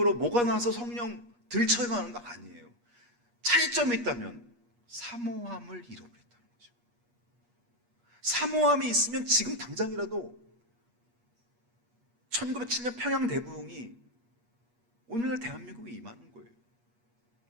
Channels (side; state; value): left; late; 8.4 ms